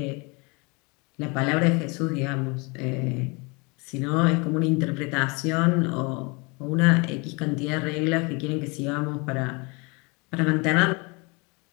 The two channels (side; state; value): right; quieter; 29.4 dB